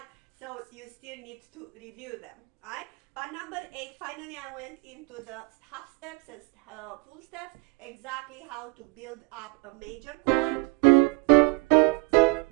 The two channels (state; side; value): quieter; left; 28.0 dB